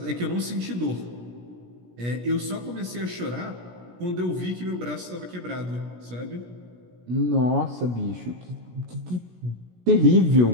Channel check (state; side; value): late; left; 17 ms